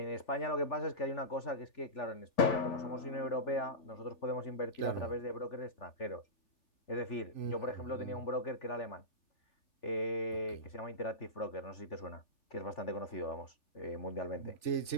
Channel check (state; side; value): late; right; 3.4 ms